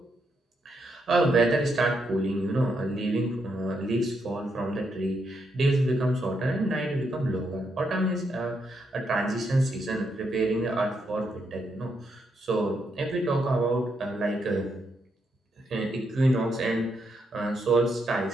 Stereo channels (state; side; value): normal; both; correlation 0.79